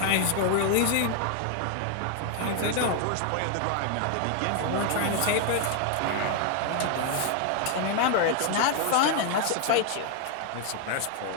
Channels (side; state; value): both; different; correlation 0.00